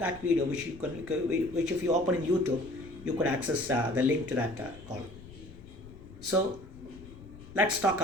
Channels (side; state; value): left; noise; rumble, 18 dB below the sound